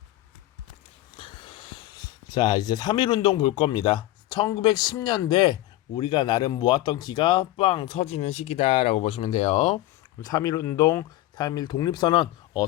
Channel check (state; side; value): quieter; right; 15.8 dB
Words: 자, 이제 3.1 운동 볼 겁니다. 1910년대 우리가 나름 모았던 기가 빵 터지는 시기다라고 보시면 돼요. 3.1 운동, 3.1 독립선언